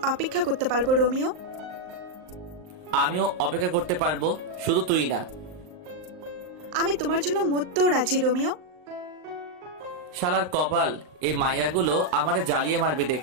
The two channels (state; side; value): late; left; 38 ms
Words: অপেক্ষা করতে পারবো রোমিও। আমিও অপেক্ষা করতে পারবো, শুধু তুই না। আমি তোমার জন্য মরতেও রাজি রোমিও। শালার কপাল, এই মায়াগুলো আমারে জ্বালিয়ে মারবে